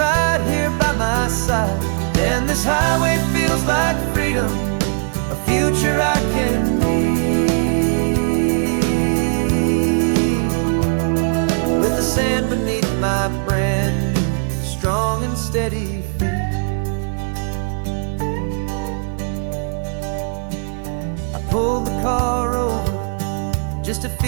here by my side. And this highway feels like freedom, a future I can need, with the sand beneath my brand new strong and steady feet. I pulled the car over just to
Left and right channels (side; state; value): left; silent; 59 dB below the other